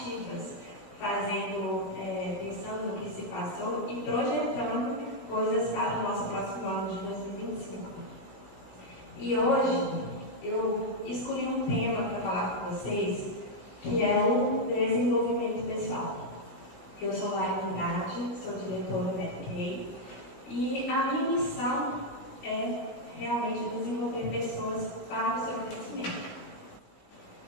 pensando no que se passou e projetando coisas para o nosso próximo ano de 2025. E hoje eu escolhi um tema para falar com vocês, que é o desenvolvimento pessoal. Eu sou Lara Andrade, sou diretora da MBA e a minha missão é realmente desenvolver pessoas para o seu crescimento.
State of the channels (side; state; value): right; late; 16 ms